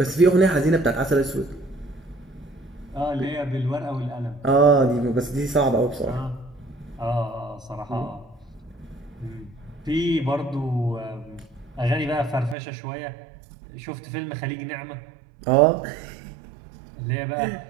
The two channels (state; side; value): drops out; left; at 12.6 s